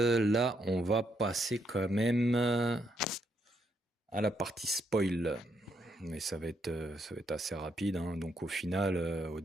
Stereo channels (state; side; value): normal; both; correlation 0.76